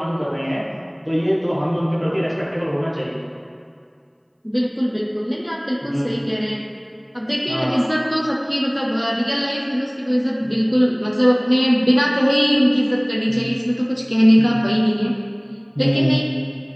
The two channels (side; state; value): both; identical; correlation 1.00